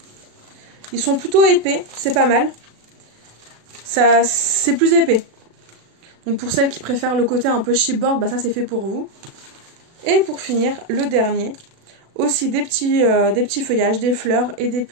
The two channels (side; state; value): left; late; 36 ms